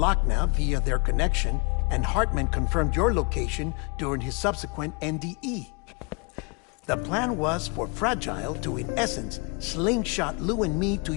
via their connection, and Hartman confirmed your location during his subsequent NDE. The plan was for Fragile to, in essence, slingshot Lou and me to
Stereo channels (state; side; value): quieter; right; 31.9 dB